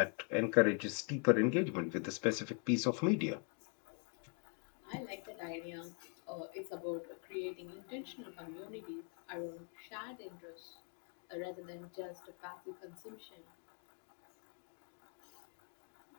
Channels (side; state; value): right; quieter; 36.8 dB